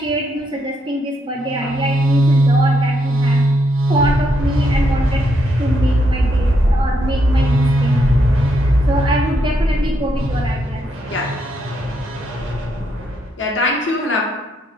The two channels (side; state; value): both; normal; correlation 0.77